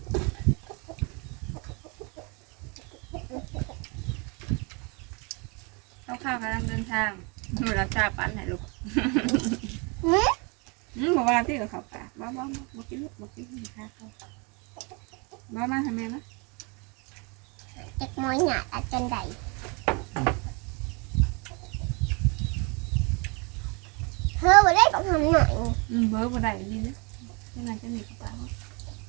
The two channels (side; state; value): left; quieter; 31.4 dB